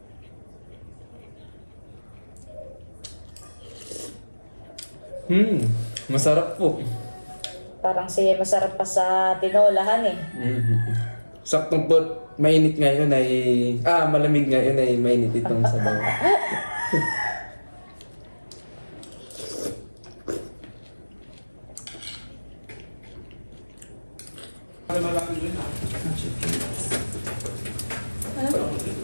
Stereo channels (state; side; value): inverted; both; correlation -1.00